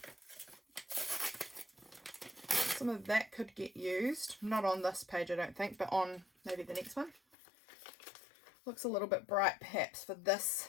that could get used. Not on this page I don't think, but on maybe the next one. Looks a little bit bright perhaps for this.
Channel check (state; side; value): drops out; right; at 7.2 s